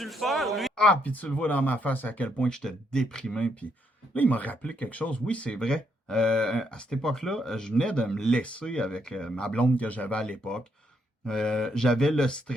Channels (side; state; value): both; normal; correlation 0.75